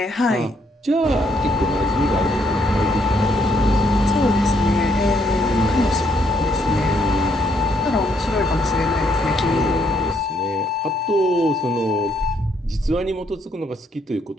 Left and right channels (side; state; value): both; normal; correlation 0.72